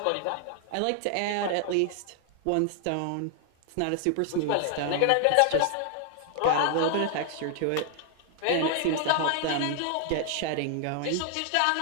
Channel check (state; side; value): different; both; correlation 0.00